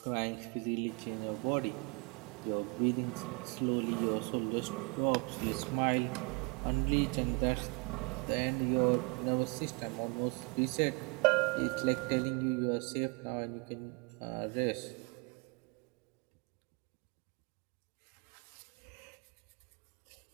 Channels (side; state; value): left; quieter; 31.5 dB